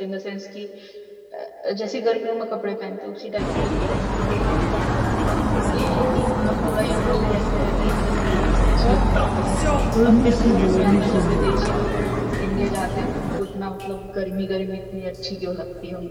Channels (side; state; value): both; identical; correlation 1.00